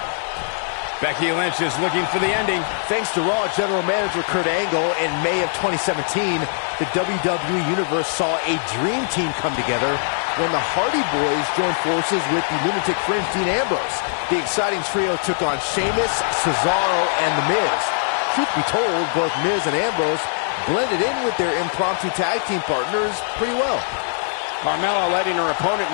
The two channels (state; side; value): silent; right; digital silence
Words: Becky Lynch is looking for the ending. Thanks to Raw General Manager Kurt Angle, in May of 2017, the WWE Universe saw a dream team come together when the Hardy Boys joined forces with the Lunatic Fringe Dean Ambrose. The exciting trio took on Sheamus, Cesaro, and The Miz. Truth be told, both Miz and Ambrose blended in with their impromptu tag team partners pretty well. Carmella letting her opponent